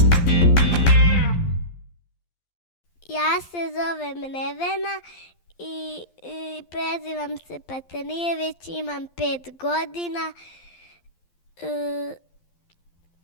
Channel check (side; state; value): right; late; 12 ms